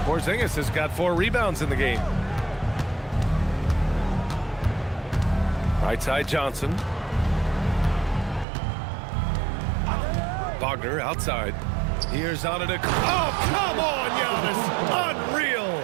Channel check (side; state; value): left; drops out; at 8.5 s